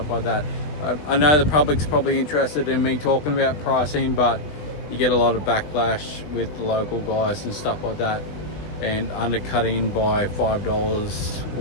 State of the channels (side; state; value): right; late; 20 ms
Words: like that. I know the public's probably interested in me talking about pricing, but you get a lot of backlash with the local guys and stuff like that, and undercutting by $5